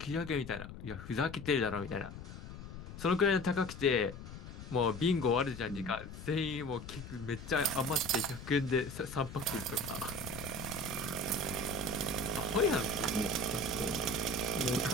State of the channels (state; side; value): noise; left; rumble, 11 dB below the sound